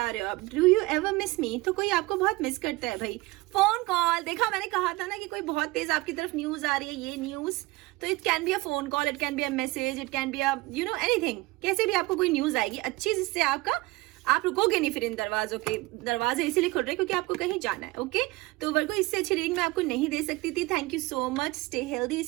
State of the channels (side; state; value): left; quieter; 21.4 dB